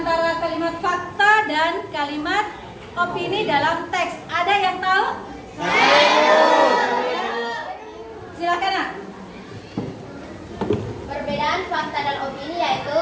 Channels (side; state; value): both; identical; correlation 1.00